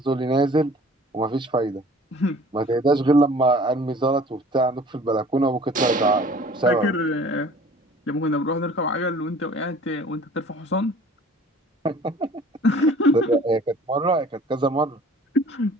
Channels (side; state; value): both; normal; correlation 0.49